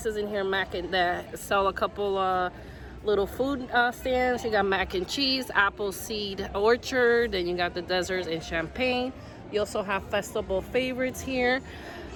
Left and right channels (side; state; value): both; identical; correlation 1.00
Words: in here, that sell a couple little food stands. You got mac and cheese, Appleseed Orchard, then you got the desserts and champagne. You also have festival favorites here.